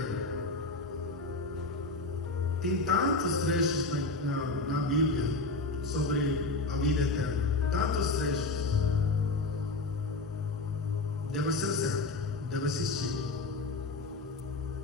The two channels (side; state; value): right; quieter; 3.2 dB